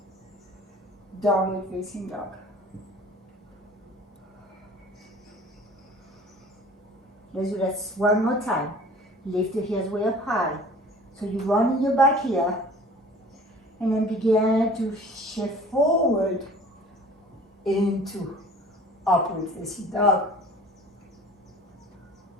Downward facing dog. Let's do that one more time. Lift the heels way up high. So you run in your back here. And then begin to shift forward into upward facing dog.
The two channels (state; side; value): normal; both; correlation 0.47